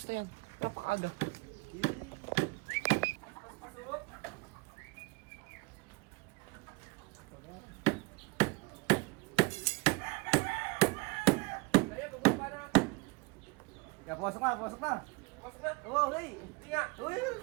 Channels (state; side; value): quieter; left; 27.1 dB